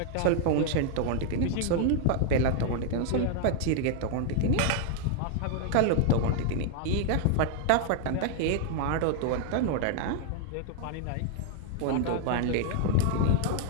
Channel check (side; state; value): both; different; correlation 0.00